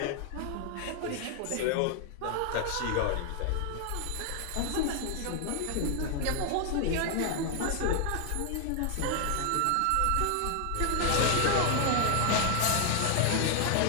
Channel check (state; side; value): different; both; correlation 0.00